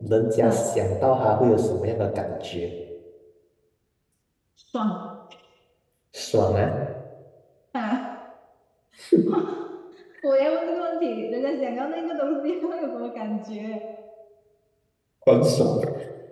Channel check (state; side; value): identical; both; correlation 1.00